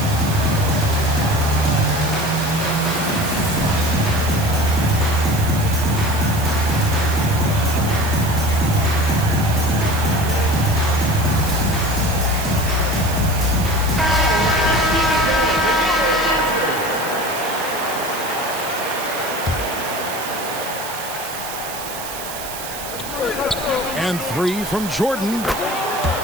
And 3 from Jordan.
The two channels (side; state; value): right; noise; hiss, 10 dB below the sound